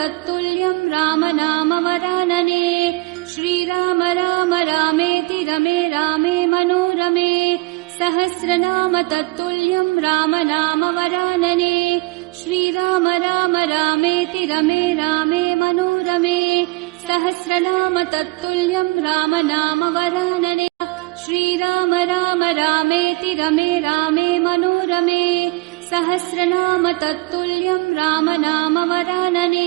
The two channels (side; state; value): left; quieter; 24.5 dB